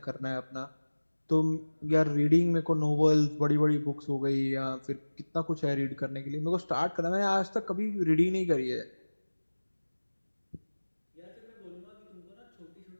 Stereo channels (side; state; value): both; inverted; correlation -1.00